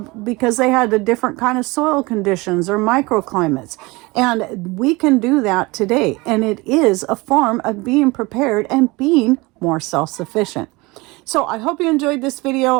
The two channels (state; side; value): quieter; left; 23.6 dB